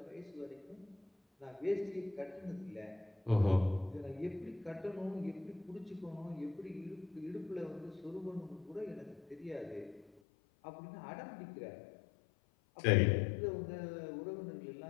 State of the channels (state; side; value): drops out; right; at 10.2 s